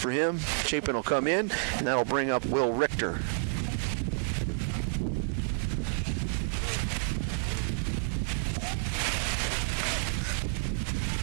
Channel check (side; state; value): left; silent; digital silence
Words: him. Chapin will come in, and that'll bring up Will Richter.